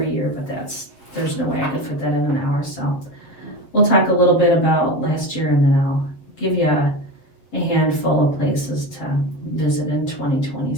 year, but there's no way I could fit that in an hour. So we'll talk a little bit about last year, and then I'll give you a handful of places to visit in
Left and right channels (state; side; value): late; right; 7.5 ms